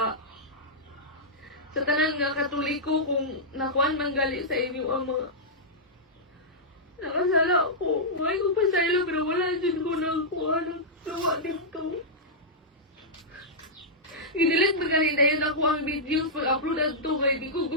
tanan nga Katoliko kung nakuan manggali sa inyo ang mga nakasala ko. May ko pasaylo pero wala dyan ko ng kuha ng luwa dito. Inilit ba kanina yun ako ang videos pag-upload at to kay di ko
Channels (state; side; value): normal; both; correlation -0.11